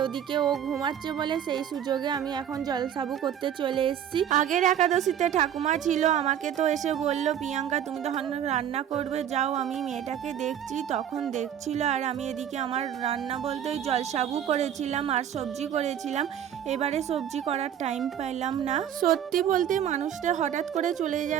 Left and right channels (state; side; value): quieter; left; 9.7 dB